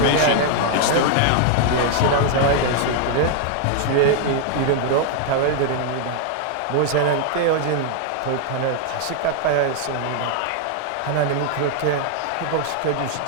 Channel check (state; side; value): different; both; correlation 0.00